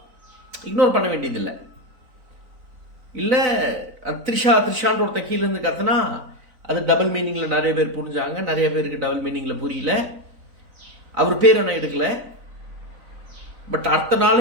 இக்னோர் பண்ண வேண்டியதில்லை. இல்லை த்ரிஷான்ற ஒருத்தன் கீழேருந்து கத்துனா அது டபுள் மீனிங்கில் நிறைய பேர் புரிஞ்சாங்க, நிறைய பேருக்கு டபுள் மீனிங்கில் புரியல. அவர் பேர் என்ன எடுக்கல. பட் அடுத்த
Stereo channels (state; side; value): late; left; 3.9 ms